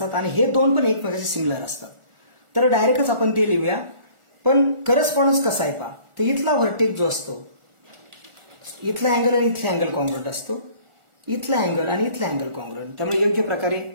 आणि हे दोन पण एकमेकांशी सिमिलर असतात. तर डायरेक्टच आपण ते लिहूया. पण करस्पॉन्डन्स कसा आहे पहा. तर इथला व्हर्टेक्स जो असतो, इथला अँगल आणि इथला अँगल कॉन्ग्रुएंट असतो, इथला अँगल आणि इथला अँगल कॉन्ग्रुएंट. त्यामुळे योग्य प्रकारे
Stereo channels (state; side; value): late; left; 1.4 ms